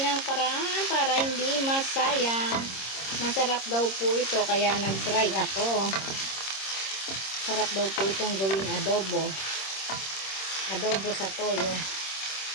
ang paraan para hindi masayang. Masarap daw po ito, kaya nag-try ako. Sarap daw po itong gawing adobo. Adobo sa toyo.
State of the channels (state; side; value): late; right; 26 ms